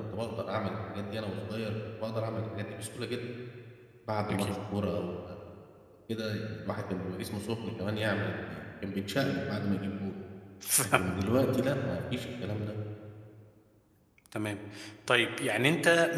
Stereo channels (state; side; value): identical; both; correlation 1.00